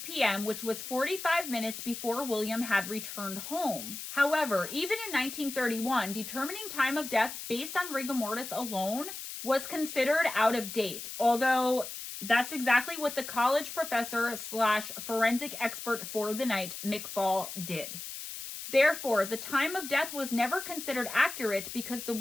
p.m., which was 45 minutes before William had returned home. However, even in 1931, determining time of death based on rigor mortis alone was considered out of date, although that's exactly what the college professor / forensic expert for the night, McFall, did. Therefore, the time of death was never considered accurate because the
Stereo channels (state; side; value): noise; left; hiss, 9 dB below the sound